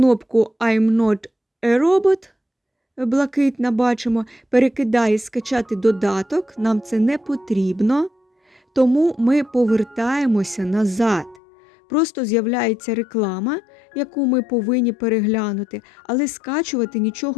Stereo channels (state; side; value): drops out; right; at 11.4 s